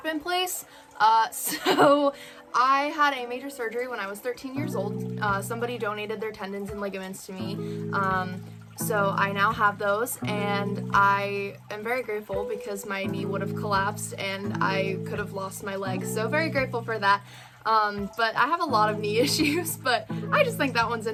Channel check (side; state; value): both; identical; correlation 1.00